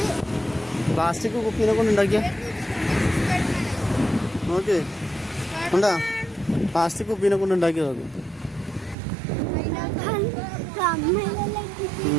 ഉണ്ടാക്കിയ നോക്ക് ഉണ്ടാ, പ്ലാസ്റ്റിക് കുപ്പീനെ കൊണ്ട് ഉണ്ടാക്കിയത്. അത്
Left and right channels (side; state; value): left; drops out; at 9.0 s